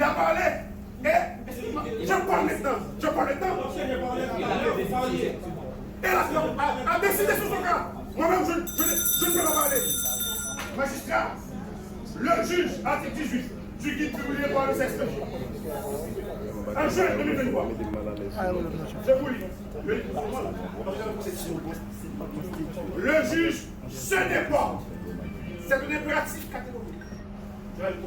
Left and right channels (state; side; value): identical; both; correlation 1.00